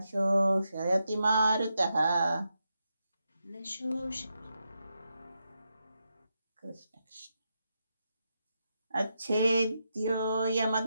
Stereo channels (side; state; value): both; inverted; correlation -0.85